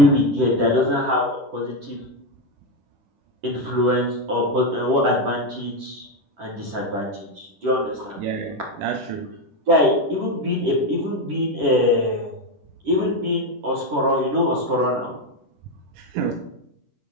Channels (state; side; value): late; left; 10 ms